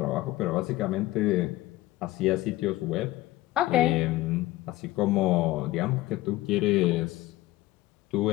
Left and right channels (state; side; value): quieter; right; 17.3 dB